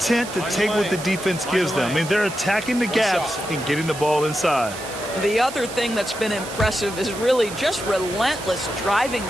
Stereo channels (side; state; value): right; noise; hiss, 12 dB below the sound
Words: to take what the defense gives them. I mean, they're attacking the gaps and getting the ball inside. The other thing that's been impressive is really just relentless driving